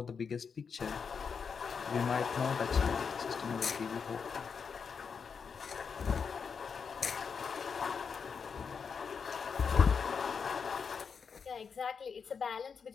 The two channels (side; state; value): right; quieter; 6.0 dB